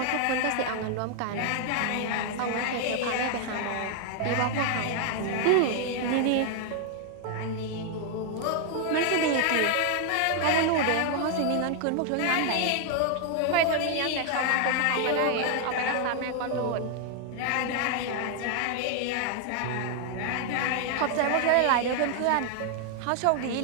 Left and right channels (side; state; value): both; different; correlation 0.00